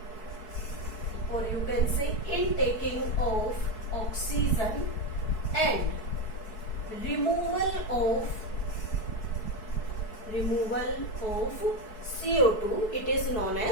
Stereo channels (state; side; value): late; right; 4.6 ms